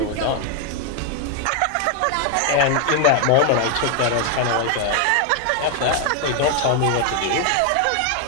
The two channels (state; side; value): different; both; correlation 0.00